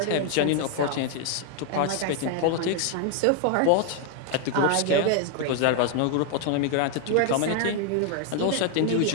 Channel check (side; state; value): both; different; correlation 0.01